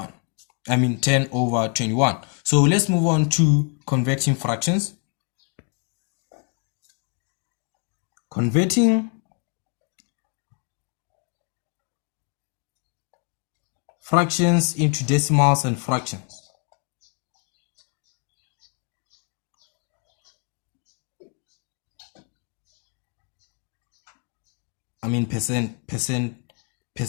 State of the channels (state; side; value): quieter; right; 37.4 dB